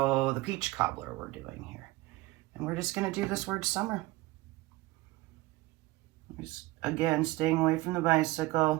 the peach cobbler we're doing here. And we're just going to do this word summer. Just, again, staying away from the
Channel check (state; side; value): quieter; left; 20.1 dB